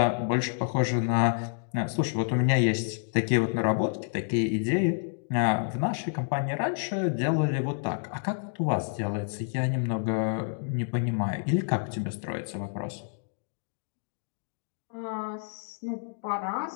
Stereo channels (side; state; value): right; silent; digital silence